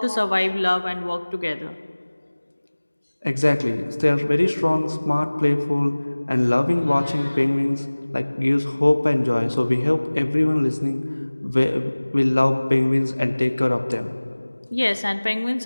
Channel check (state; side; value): inverted; both; correlation -1.00